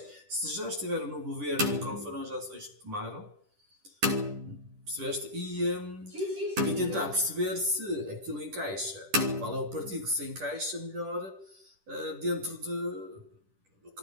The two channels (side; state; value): left; late; 10 ms